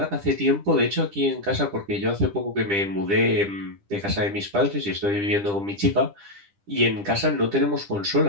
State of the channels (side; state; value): left; late; 10 ms